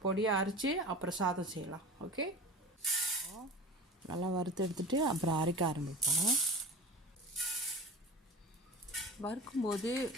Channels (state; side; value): normal; both; correlation 0.34